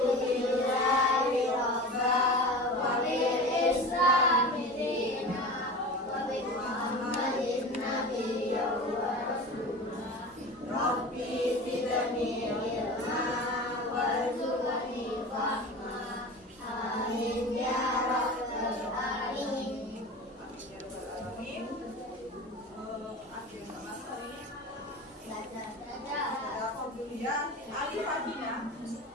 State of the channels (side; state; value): both; normal; correlation 0.32